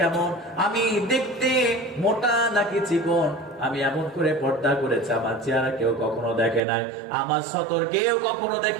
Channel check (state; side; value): drops out; left; at 6.6 s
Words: কেমন, আমি দেখতে মোটা নাকি চিকন, আমি এমন করে পর্দা করেছি, আমার চেহারা কেউ কখনো দেখে নাই, আমার সতর কেউ কখনো